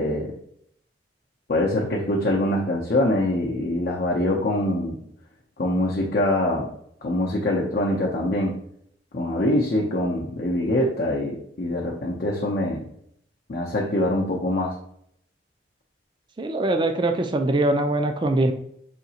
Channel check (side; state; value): both; normal; correlation 0.48